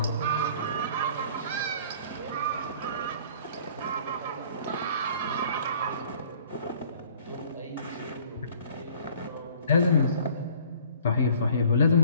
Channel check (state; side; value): inverted; both; correlation -0.53